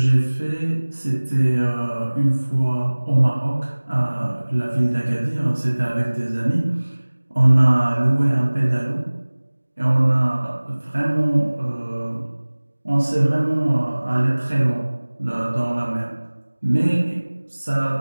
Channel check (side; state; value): both; inverted; correlation -1.00